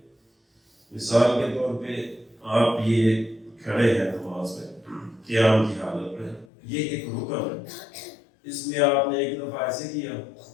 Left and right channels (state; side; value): drops out; right; at 6.5 s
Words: مثال کے طور پہ آپ یہ کھڑے ہیں نماز میں قیام کی حالت میں، یہ ایک رکن ہے، اس میں آپ نے ایک دفعہ ایسے کیا،